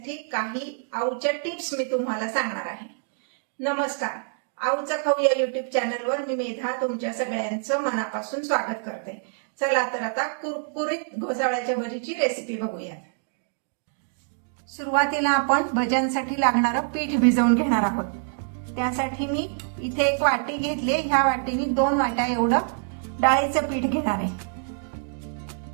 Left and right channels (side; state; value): left; silent; digital silence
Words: काही आऊच्या टिप्स मी तुम्हाला सांगणार आहे. नमस्कार, आऊचा खाऊ या युट्यूब चॅनलवर मी मेधा तुमच्या सगळ्यांचं मनापासून स्वागत करते. चला तर आता कुरकुरीत घोसावळ्याच्या भजीची रेसिपी बघूया. सुरुवातीला आपण भज्यांसाठी लागणारं पीठ भिजवून घेणार आहोत. त्यासाठी मी इथे एक वाटी घेतले. ह्या वाटीने 2 वाट्या एवढं डाळीचं पीठ घेणार आहे.